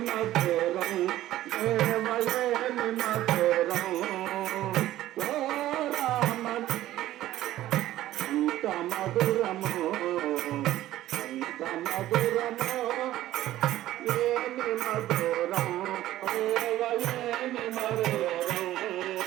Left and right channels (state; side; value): quieter; left; 14.4 dB